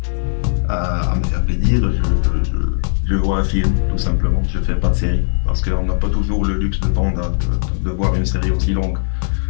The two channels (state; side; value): silent; right; digital silence